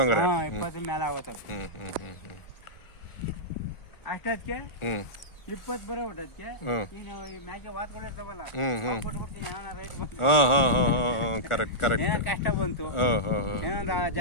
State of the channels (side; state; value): right; late; 1.4 ms